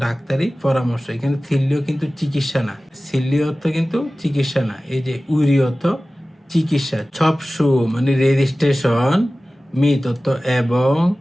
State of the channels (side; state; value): both; normal; correlation 0.97